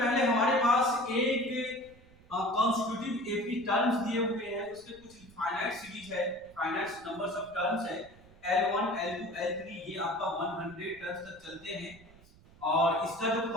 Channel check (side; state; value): right; noise; rumble, 24 dB below the sound